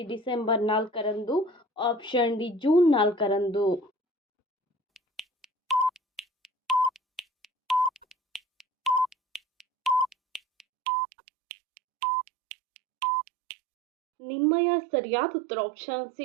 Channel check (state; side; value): drops out; left; at 10.7 s